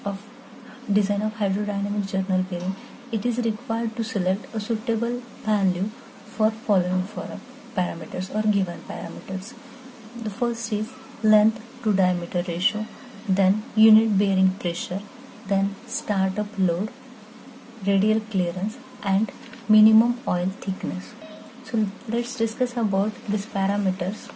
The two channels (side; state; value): both; identical; correlation 1.00